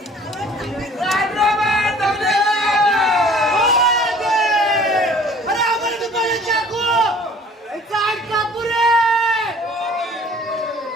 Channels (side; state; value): both; normal; correlation 0.51